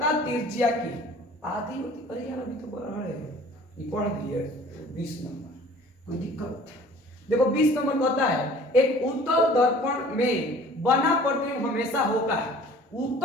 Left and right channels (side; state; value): both; normal; correlation 0.50